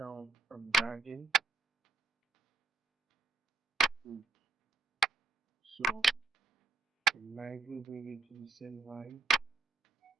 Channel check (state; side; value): quieter; left; 3.9 dB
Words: and dragging. So lightly bring it to the same line.